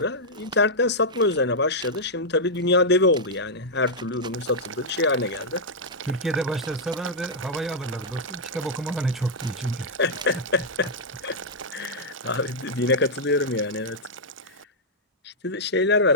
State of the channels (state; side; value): normal; both; correlation -0.07